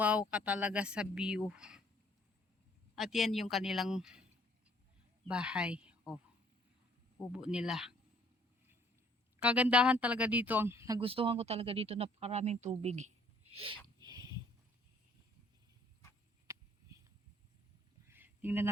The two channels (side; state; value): both; normal; correlation 0.61